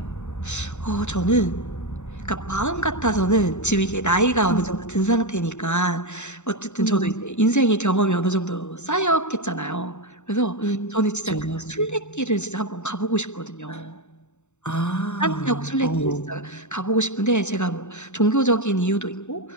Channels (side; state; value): right; late; 0.83 ms